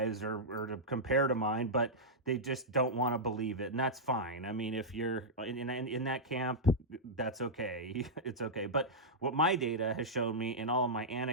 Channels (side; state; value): both; normal; correlation -0.08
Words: or to compare to mine, but they just don't want to believe it, and that's fine. I mean, if you're in that camp, that's okay. It's okay. But what my data has shown me, in all of my